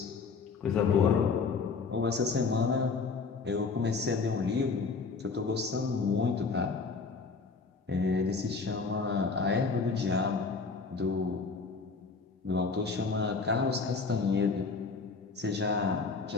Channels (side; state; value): right; quieter; 4.7 dB